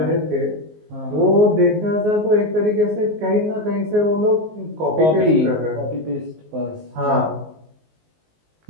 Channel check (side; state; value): left; late; 19 ms